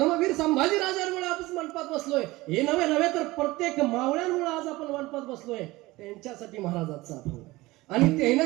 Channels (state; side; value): quieter; left; 20.0 dB